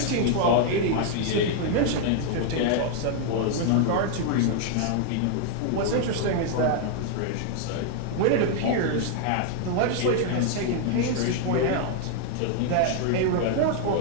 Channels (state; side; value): different; both; correlation 0.00